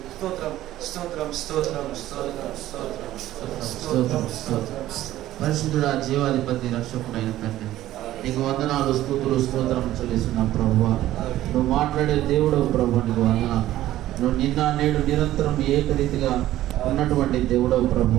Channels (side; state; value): left; quieter; 14.2 dB